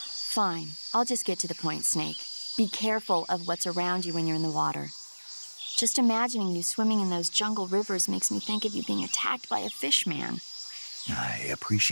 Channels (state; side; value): inverted; both; correlation -1.00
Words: Fine, I'll just get to the point, Snake. Be careful of what's around you when you're in the water. Just imagining you swimming in those jungle rivers makes me think of you being attacked by a fishman. I